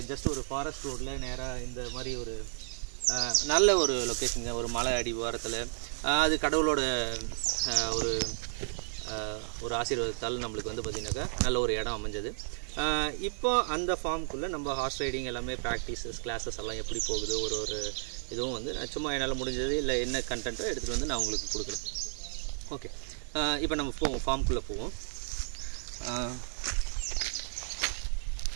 ஜஸ்ட் ஒரு ஃபாரஸ்ட் ரோட்டில் நேராக இந்த மாதிரி ஒரு நல்ல ஒரு லொக்கேஷனுங்க, ஒரு மலை அடிவாரத்தில். அது கடவுளோட ஒரு ஆசீர்வாதத்தால் நம்மளுக்கு வந்து பார்த்திங்கனாக்கா நல்ல ஒரு இடம் அமைஞ்சது. இப்போ அந்த ஃபார்முக்குள்ளே நம்ம ஹார்ஸ் ரைடிங் எல்லாமே ப்ராக்டிஸஸ் கிளாஸஸ் எல்லாம் எப்படி போகுது, ஒரு இதுவும் வந்து நான் சும்மா என்னால் முடிஞ்சது இல்லை என்ன கண்டென்ட்டோ எடுத்துகிட்டு வந்து நான் உங்களுக்கு கொடுக்குறேன். ஓகே, இப்போ நம்ம போவோம், ஃபார்முக்குள்ளே போவோம்.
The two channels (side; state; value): left; silent; 56 dB below the other